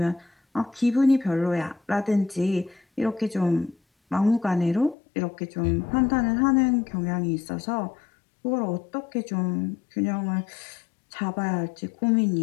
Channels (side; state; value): right; drops out; at 5.0 s